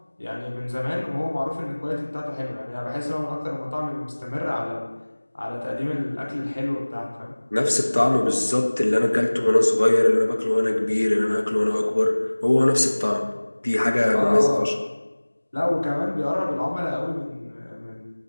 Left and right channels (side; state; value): both; inverted; correlation -1.00